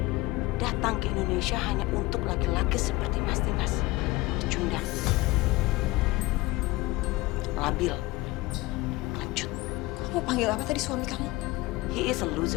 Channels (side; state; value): right; quieter; 20.6 dB